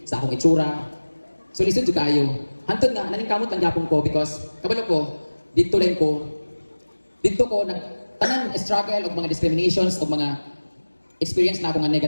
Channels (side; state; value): both; inverted; correlation -1.00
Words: sa akong itsura. So lisod jud kaayo. Hantod nga naningkamot lang gyapon ko because kabalo ko dito ko tanan struggle og mga discriminations og mga experience na ako nga